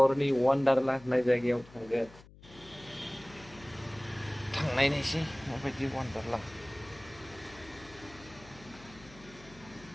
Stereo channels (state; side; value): noise; left; hum, 21 dB below the sound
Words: वान्डारला होननाय जायगायाव थांनायनोसै माबायदि वान्डारला